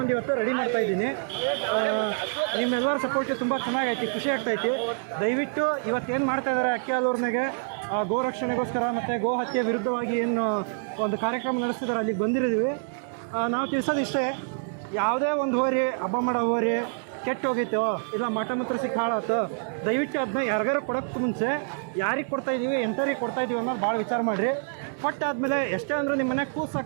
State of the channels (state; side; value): silent; left; digital silence